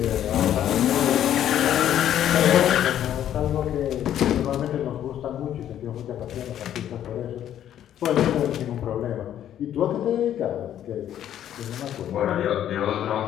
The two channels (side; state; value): right; quieter; 10.9 dB